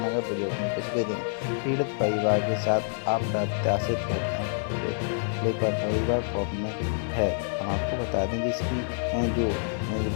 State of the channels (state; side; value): silent; right; digital silence